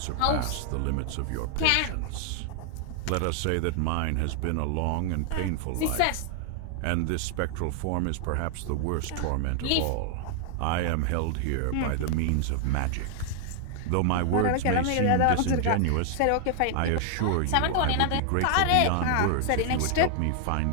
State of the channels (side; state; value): both; different; correlation 0.00